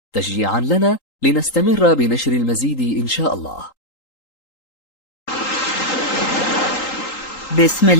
تشجيعا لنا لنستمر بنشر المزيد إن شاء الله. بسم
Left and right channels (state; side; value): late; right; 3.8 ms